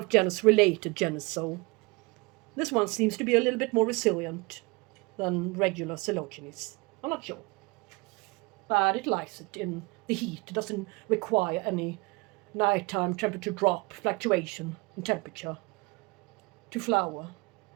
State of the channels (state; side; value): quieter; left; 25.8 dB